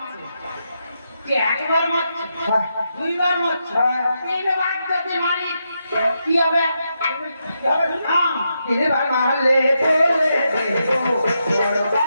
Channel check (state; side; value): inverted; both; correlation -0.84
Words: কি একবার মারছে দুইবার মারছে তিনবার যদি মারি কি হবে তিনবার মারলে বলে দেবো বড়